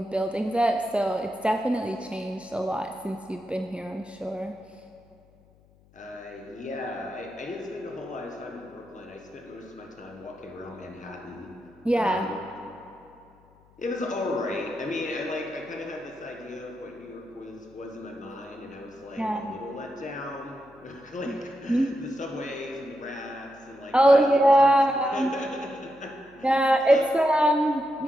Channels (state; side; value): noise; left; hum, 29 dB below the sound